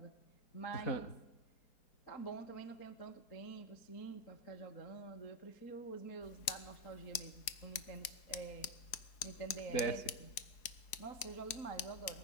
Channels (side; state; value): right; late; 4.7 ms